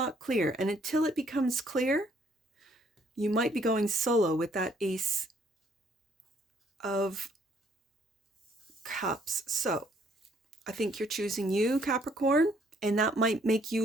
clear. And until it becomes clear, you might be going solo with that Ace of Cups. So I think you're choosing you, Capricorn, and that might make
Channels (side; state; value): both; normal; correlation 0.65